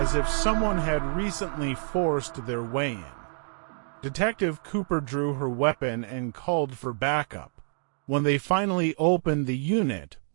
if someone had recently forced their way in. Detective Cooper drew her weapon and called for backup. When they finally opened the unit,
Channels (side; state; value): left; silent; 60 dB below the other